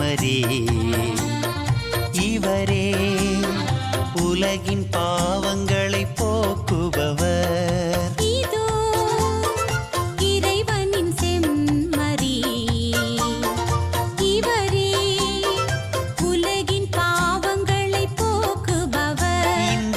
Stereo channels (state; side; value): identical; both; correlation 1.00